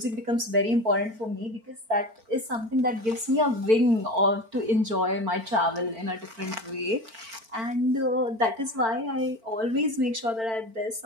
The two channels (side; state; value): left; late; 4.5 ms